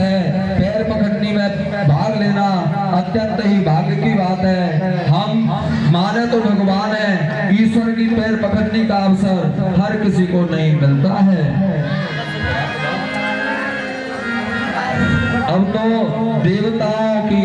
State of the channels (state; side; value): identical; both; correlation 1.00